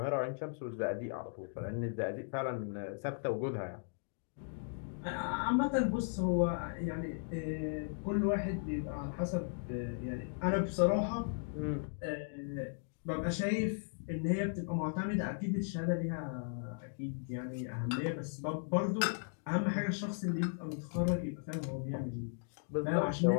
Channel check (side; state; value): right; silent; digital silence